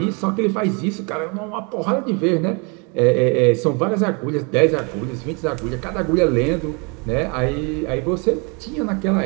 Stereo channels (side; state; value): left; quieter; 32.8 dB